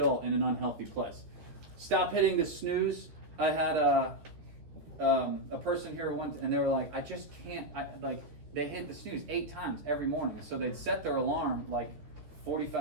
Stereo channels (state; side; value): late; left; 13 ms